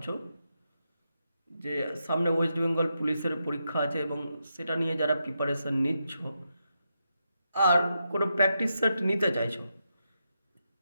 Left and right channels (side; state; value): both; inverted; correlation -0.85